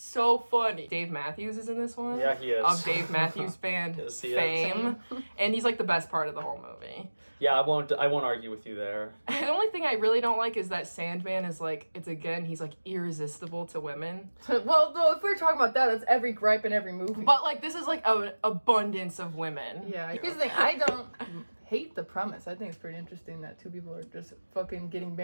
funny. Dave Matthews is in this one. Yeah, he is. Of Dave Matthews Band Yes, he is. fame, and he's like the best part of the whole movie. Yeah, I won't argue with you there. The only thing I really don't like is that Sandman is like, he's like irresistible to women. Well, though, if we're talking about that, that's every gripe in every movie. But like, this is like an abundance of women. yeah, here's the thing. I don't hate the premise. I think it's pretty interesting that two people are just fucking getting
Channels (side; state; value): both; inverted; correlation -1.00